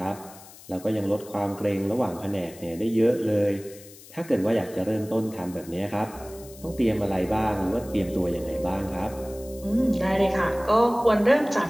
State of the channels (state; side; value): noise; left; hiss, 20 dB below the sound